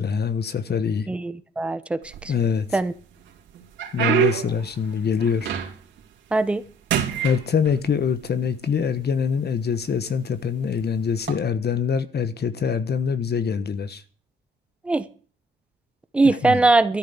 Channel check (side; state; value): both; normal; correlation 0.62